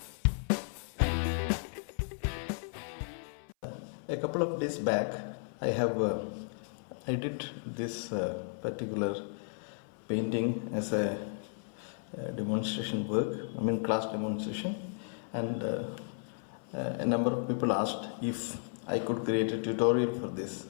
A couple of days back I did this particular painting as a demonstration work, class demonstration, and a number of people asked if I could create a tutorial for this.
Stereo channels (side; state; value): right; silent; 55 dB below the other